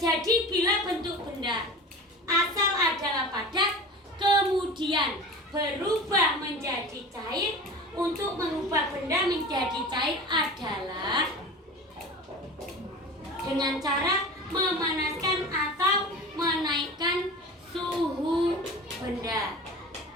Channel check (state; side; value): normal; both; correlation 0.34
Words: bila bentuk benda asal adalah padat kemudian berubah menjadi cair. Untuk mengubah benda menjadi cair adalah dengan cara memanaskan atau menaikkan suhu benda.